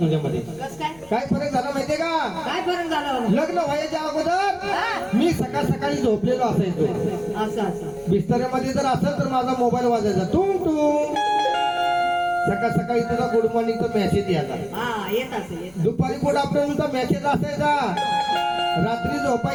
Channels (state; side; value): noise; left; rumble, 26 dB below the sound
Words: कस काय? काय फरक झाला माहितीये का, काय फरक झाला? लग्न व्हायच्या अगोदर मी सकाळ सकाळी झोपलेलो असायचो. असं असं. बिस्तऱ्यामध्ये जर असेल तर माझा मोबाईल वाजायचा टुंग टुंग. सकाळ सकाळी तुझा गुड मॉर्निंगचा मेसेज यायचा. हा, येत असेल येत. दुपारी गुड आफ्टरनूनचा मेसेज असायचा. रात्री